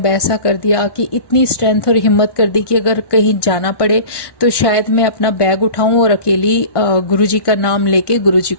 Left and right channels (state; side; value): late; right; 1.1 ms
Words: ऐसा कर दिया कि इतनी स्ट्रेंथ और हिम्मत कर दी कि अगर कहीं जाना पड़े तो शायद मैं अपना बैग उठाऊं और अकेली गुरुजी का नाम लेके, गुरुजी